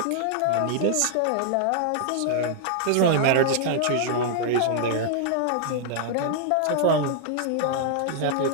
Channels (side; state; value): both; different; correlation 0.00